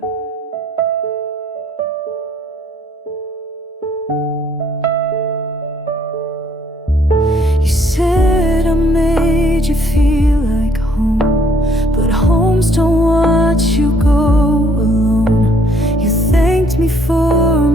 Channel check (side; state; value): both; normal; correlation 0.64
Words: You said I made you feel like home, but homes don't watch you go alone. You thanked me for